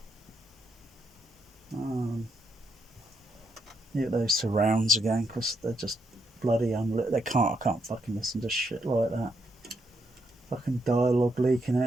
those surrounds again, because they're just bloody unlit. I can't fucking listen to shit like that. Fucking dialogue leaking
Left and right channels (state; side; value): normal; both; correlation 0.77